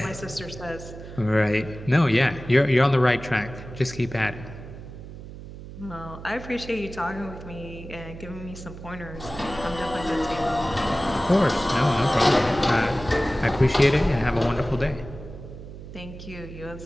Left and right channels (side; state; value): right; noise; hum, 13 dB below the sound